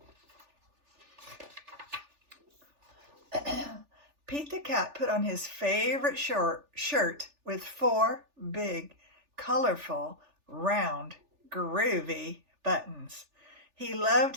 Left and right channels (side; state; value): left; late; 3.4 ms